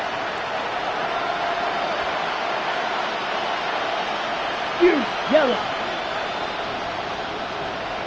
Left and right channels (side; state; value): both; identical; correlation 1.00